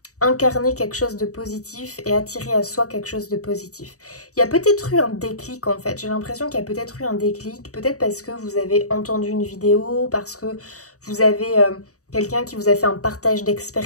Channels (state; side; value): late; right; 0.66 ms